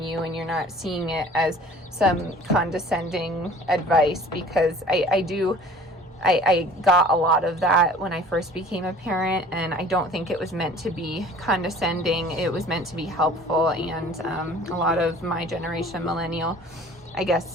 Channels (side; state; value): both; normal; correlation 0.48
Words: you, and you're not seeing it as some condescending advice, because I got a lot of that when I first became a parent, and I don't think it was meant to be condescending. It was meant to be helpful. And a lot of my generation, millennial, I guess